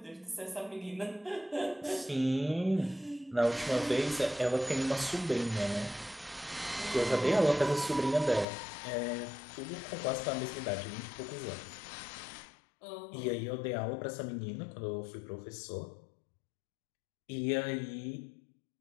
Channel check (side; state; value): right; drops out; at 8.5 s